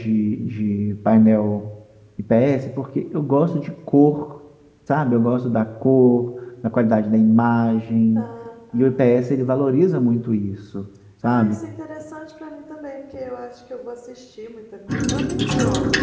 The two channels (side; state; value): both; identical; correlation 1.00